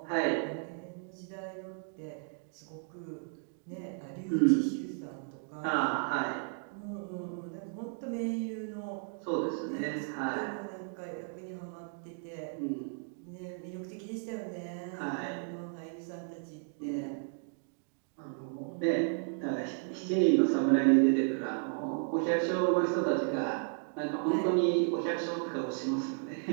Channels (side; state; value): left; silent; 55 dB below the other